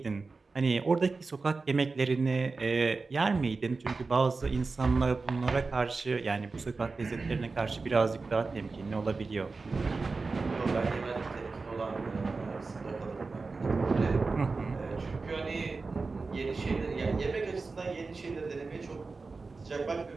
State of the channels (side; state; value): left; quieter; 4.0 dB